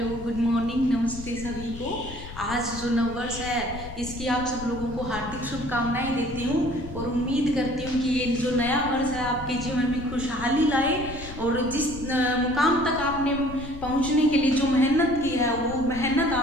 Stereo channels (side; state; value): left; noise; rumble, 12 dB below the sound